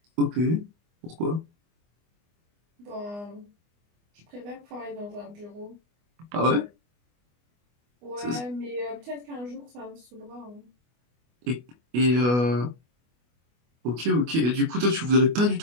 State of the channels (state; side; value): late; left; 24 ms